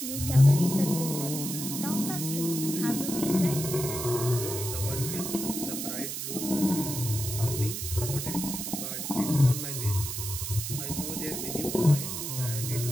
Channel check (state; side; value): noise; right; hiss, 5 dB below the sound